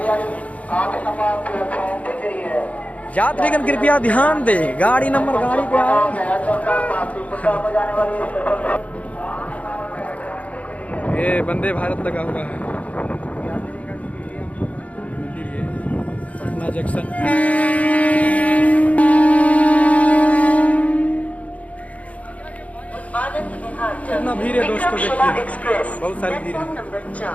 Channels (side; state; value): right; late; 0.067 ms